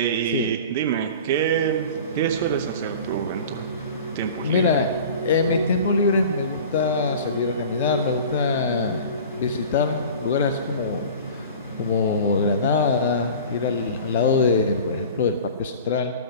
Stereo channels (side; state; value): both; inverted; correlation -0.39